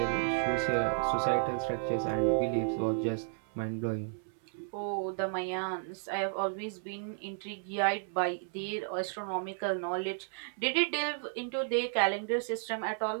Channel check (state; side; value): silent; left; 56 dB below the other